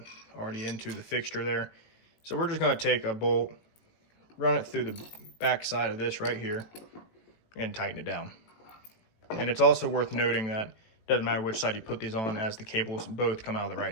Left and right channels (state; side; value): late; right; 18 ms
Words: already into the fixture there. So we're just going to take a bolt, run it through the back side of this right here, and tighten it down. And it's also worth noting that it doesn't matter which side you put these on, as the cables both come out of the